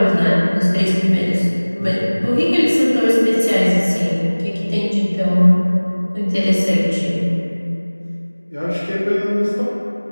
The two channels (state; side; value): inverted; both; correlation -1.00